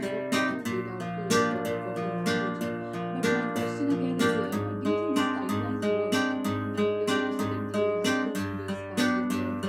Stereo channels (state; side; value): identical; both; correlation 1.00